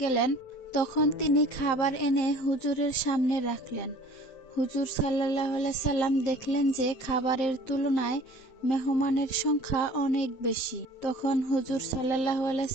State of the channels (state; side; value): late; right; 7.6 ms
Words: গেলেন, তখন তিনি খাবার এনে হুজুরের সামনে রাখলেন। হুজুর সাল্লাল্লাহু আলাইহি সাল্লাম দেখলেন যে খাবারের তুলনায় মেহমানের সংখ্যা অনেক বেশি। তখন হুজুর সাল্লাল্লাহু আলাইহি